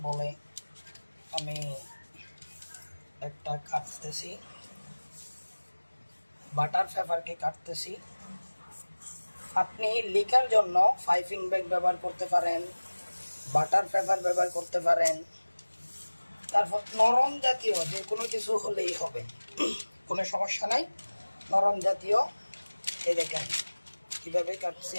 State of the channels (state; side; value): inverted; both; correlation -1.00